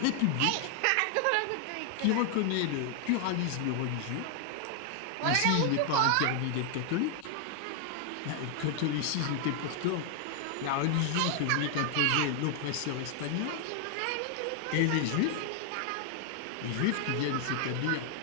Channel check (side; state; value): both; different; correlation 0.00